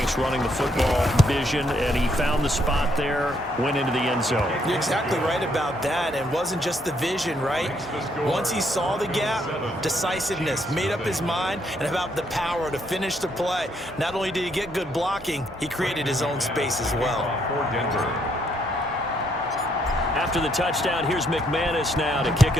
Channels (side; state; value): both; normal; correlation 0.72